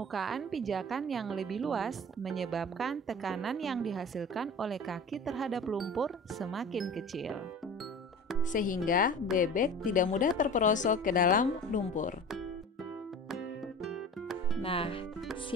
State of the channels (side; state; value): both; normal; correlation 0.38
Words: pijakan yang lebih luas menyebabkan tekanan yang dihasilkan oleh kaki terhadap lumpur semakin kecil, sehingga bebek tidak mudah terperosok ke dalam lumpur. Nah,